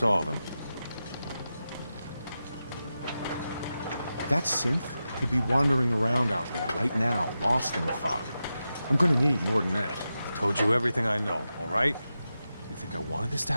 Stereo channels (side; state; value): both; inverted; correlation -0.91